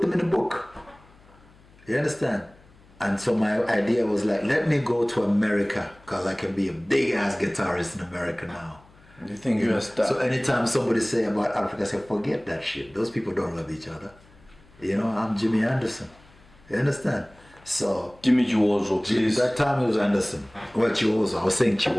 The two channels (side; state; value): left; noise; hum, 27 dB below the sound